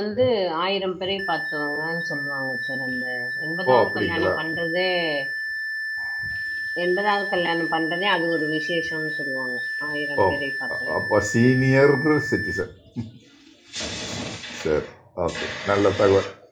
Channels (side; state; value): both; identical; correlation 1.00